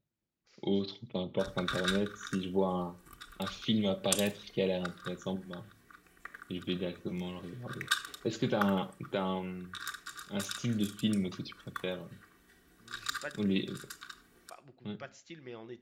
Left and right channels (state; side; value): identical; both; correlation 1.00